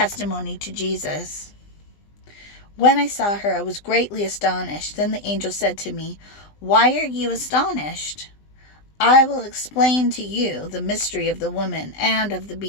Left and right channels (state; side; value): late; right; 20 ms